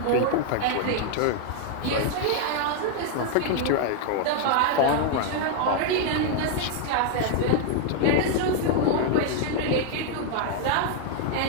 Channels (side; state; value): both; different; correlation 0.00